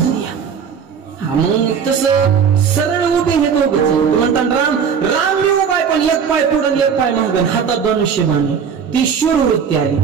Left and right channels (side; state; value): left; quieter; 6.9 dB